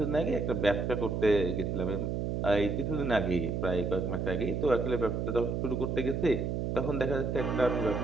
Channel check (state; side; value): noise; right; hum, 1 dB below the sound